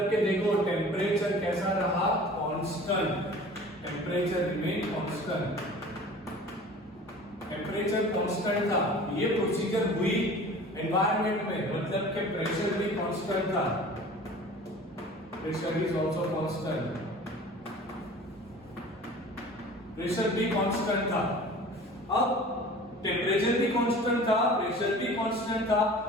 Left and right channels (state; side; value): normal; both; correlation 0.43